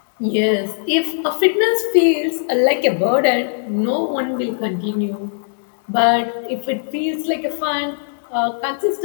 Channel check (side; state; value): right; silent; 64 dB below the other